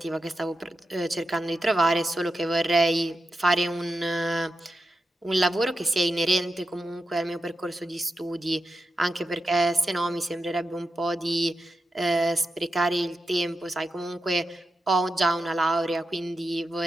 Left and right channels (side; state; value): both; normal; correlation 0.89